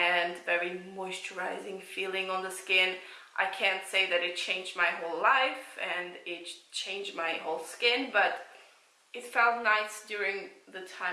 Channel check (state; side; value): identical; both; correlation 1.00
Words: very moisturizing feeling on the skin. I can't say that it changed my whole life and it changed my whole skin, but it felt nice during the